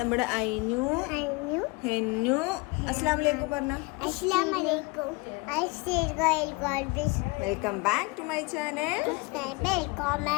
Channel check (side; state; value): right; quieter; 26.4 dB